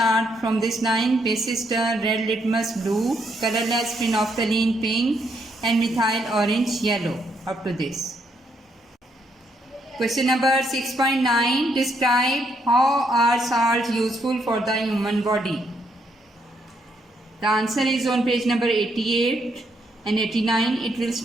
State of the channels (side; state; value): both; normal; correlation 0.75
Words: from this line. Basis turn red litmus blue, colorless phenolphthalein pink and methyl orange yellow. Up to this. Question number 6.9. Describe how are salts useful for the human body. The answer is on page number 88 and 89. It will